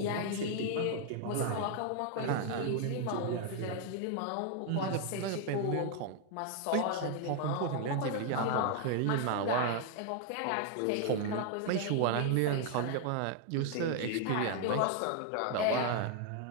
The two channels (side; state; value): both; different; correlation 0.00